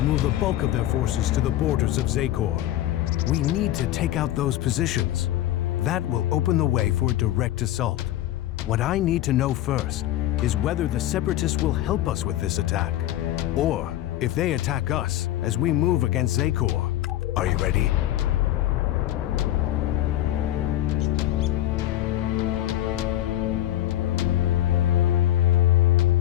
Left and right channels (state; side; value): quieter; right; 13.7 dB